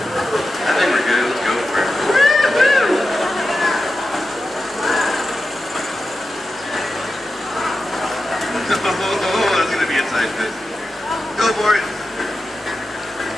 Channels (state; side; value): normal; both; correlation 0.91